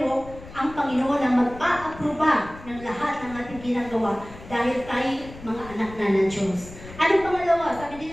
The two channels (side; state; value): left; noise; rumble, 16 dB below the sound